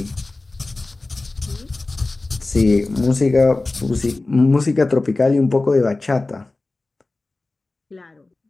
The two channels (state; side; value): quieter; right; 3.2 dB